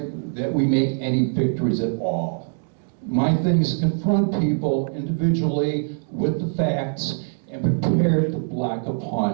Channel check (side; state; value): left; silent; 58 dB below the other